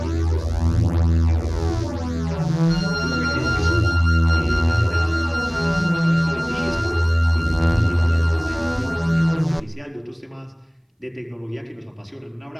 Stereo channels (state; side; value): identical; both; correlation 1.00